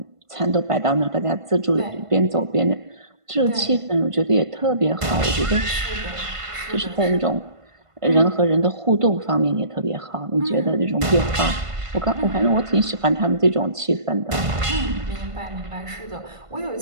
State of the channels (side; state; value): left; late; 1.5 ms